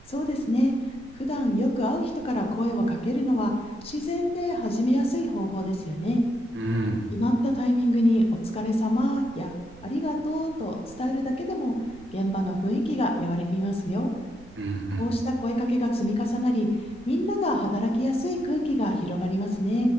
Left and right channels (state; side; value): noise; right; rumble, 22 dB below the sound